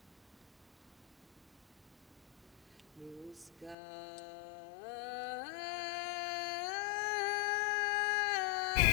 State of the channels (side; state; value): right; drops out; at 3.8 s